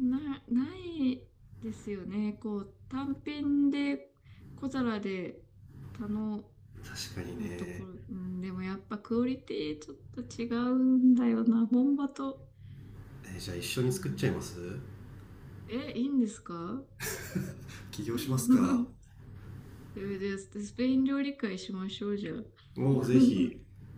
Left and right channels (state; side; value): identical; both; correlation 1.00